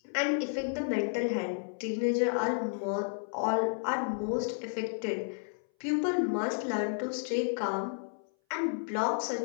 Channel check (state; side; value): silent; right; 56 dB below the other